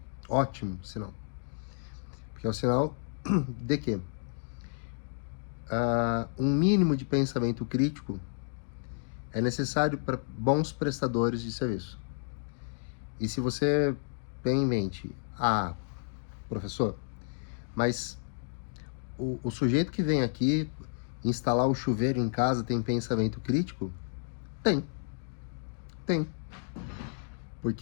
Ótimo sinal. Porque é o sinal de que um mínimo de pensamento crítico é necessário para bons prestadores de serviço. E se você tem em mente, professor, mas o sujeito que vem aqui instalar o chuveiro em casa tem pensamento crítico? Tem.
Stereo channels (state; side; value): silent; right; digital silence